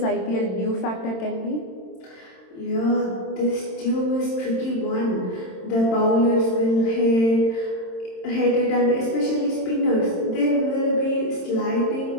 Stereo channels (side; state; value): right; late; 27 ms